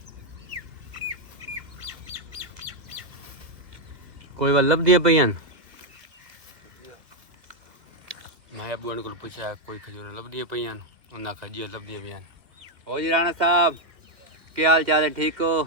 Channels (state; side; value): late; left; 2.1 ms